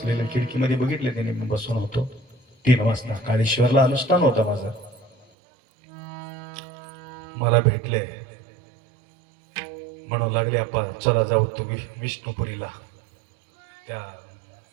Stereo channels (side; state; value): left; drops out; at 5.2 s